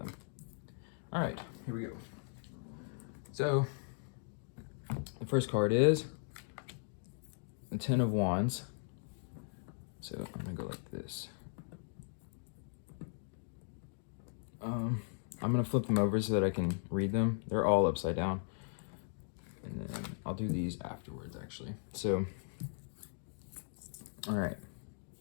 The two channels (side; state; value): right; silent; digital silence